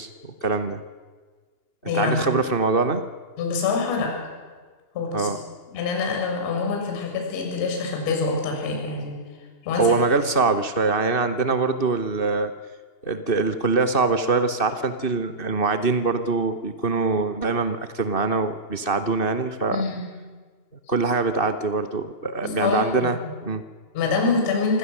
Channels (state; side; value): late; right; 2.6 ms